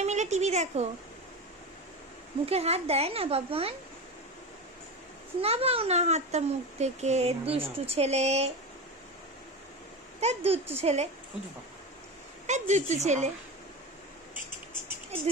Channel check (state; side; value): normal; both; correlation 0.23